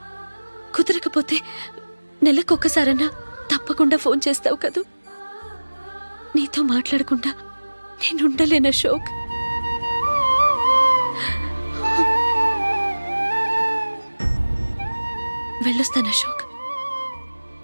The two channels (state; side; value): inverted; both; correlation -1.00